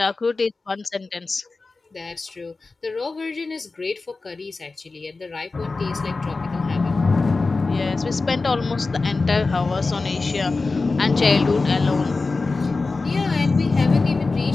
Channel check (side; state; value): right; quieter; 3.8 dB